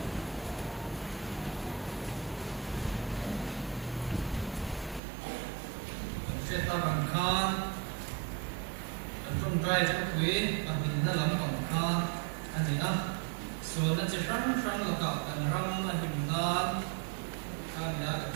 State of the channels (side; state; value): left; drops out; at 5.0 s